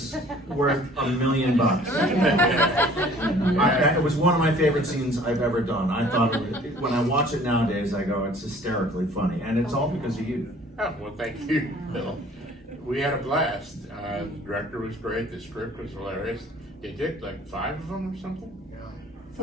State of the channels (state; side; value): normal; both; correlation 0.53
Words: worth $1 million. It was one of my favorite scenes I've ever done. I thought when I watch it nowadays, I go, it's hysterically funny, and it's all because of you. Oh, well, thank you, Bill. We had a blast. The director was great. The script was hilarious. They did like 5 of them or something.